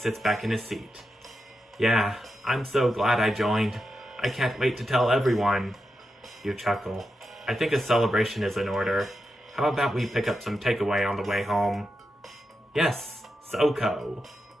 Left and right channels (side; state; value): both; normal; correlation 0.88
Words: back in his seat. Yeah, I'm so glad I joined. I can't wait to tell everyone. You chuckle. I think a celebration is in order. How about we pick up some takeaway on the way home? Yes, SoCo.